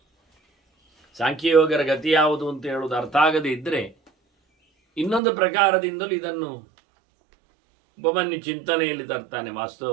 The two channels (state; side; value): drops out; left; at 5.2 s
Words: ಸಾಂಖ್ಯಯೋಗರ ಗತಿ ಯಾವುದು ಅಂತ ಹೇಳುವುದು ಅರ್ಥ ಆಗದೇ ಇದ್ದರೆ ಇನ್ನೊಂದು ಪ್ರಕಾರದಿಂದಲೂ ಇದನ್ನು ಉಪಮನ್ಯು ಚಿಂತನೆಯಲ್ಲಿ ತರ್ತಾನೆ.